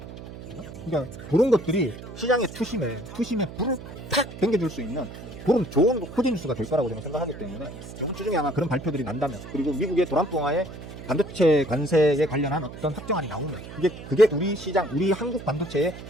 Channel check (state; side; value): noise; right; hum, 13 dB below the sound